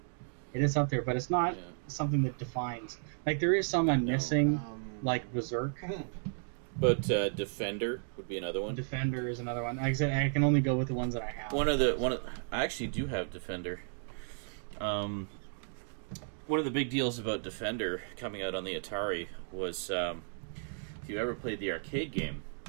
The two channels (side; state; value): left; silent; digital silence